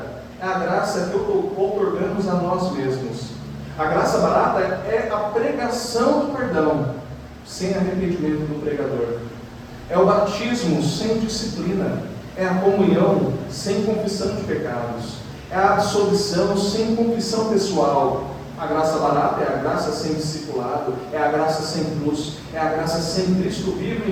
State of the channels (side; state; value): both; identical; correlation 1.00